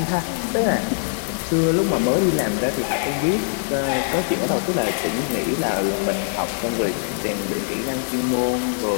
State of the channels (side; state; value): right; silent; digital silence